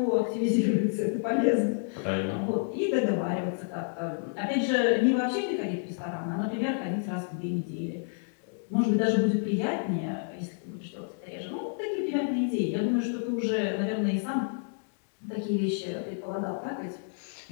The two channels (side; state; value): right; silent; digital silence